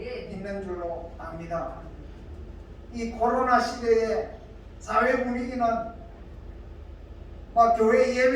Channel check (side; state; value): both; identical; correlation 1.00